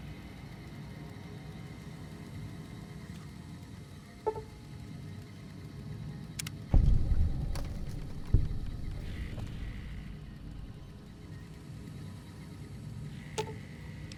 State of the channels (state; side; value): identical; both; correlation 1.00